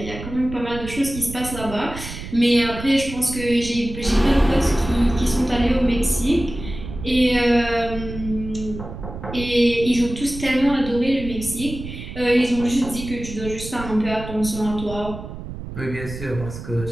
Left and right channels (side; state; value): right; noise; rumble, 10 dB below the sound